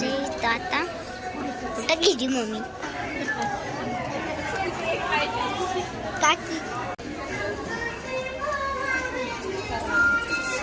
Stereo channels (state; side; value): identical; both; correlation 1.00